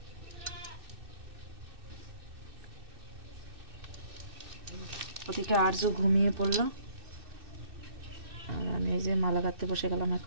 ওদিকে আরজু ঘুমিয়ে পড়লো, আর আমি এই যে মালা গাঁথতে বসে গেলাম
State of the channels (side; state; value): left; late; 2.6 ms